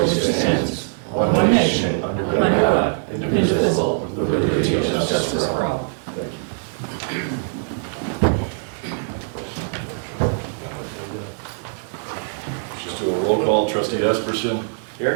it stands, one nation, under God, indivisible, with liberty and justice for all. Thank you. Just do a roll call. Trustee Esperson.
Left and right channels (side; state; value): left; silent; 64 dB below the other